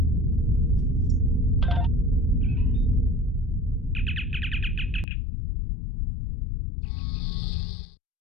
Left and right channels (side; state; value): right; drops out; at 5.1 s